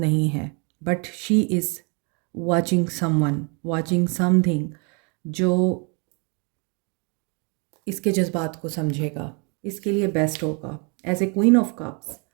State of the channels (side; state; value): left; quieter; 34.3 dB